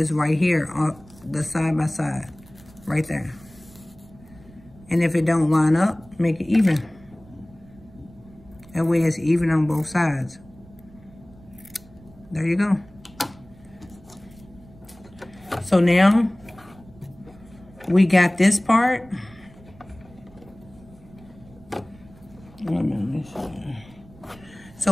right here on the side by side, right there. And if it don't line up, make it even. That way it's even on both sides. There you go. So now we got this part.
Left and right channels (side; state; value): right; noise; rumble, 23 dB below the sound